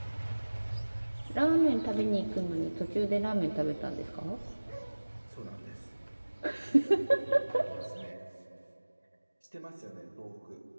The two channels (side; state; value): both; inverted; correlation -1.00